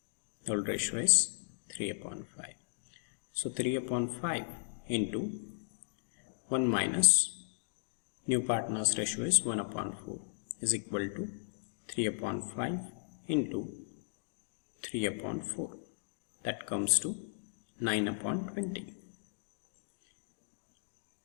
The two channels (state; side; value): silent; right; digital silence